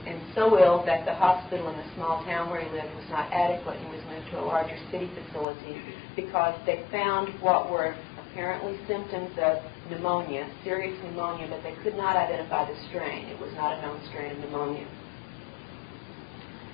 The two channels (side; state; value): right; drops out; at 5.5 s